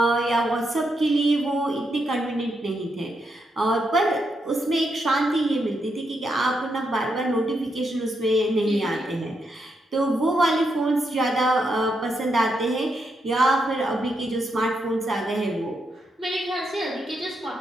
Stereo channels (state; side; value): normal; both; correlation 0.81